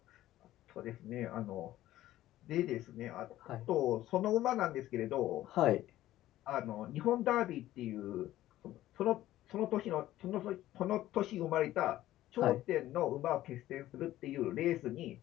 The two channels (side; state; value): right; quieter; 14.5 dB